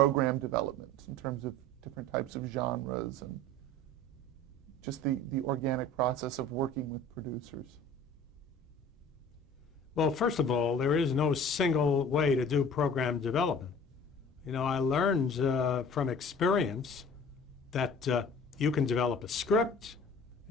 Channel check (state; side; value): normal; both; correlation 0.45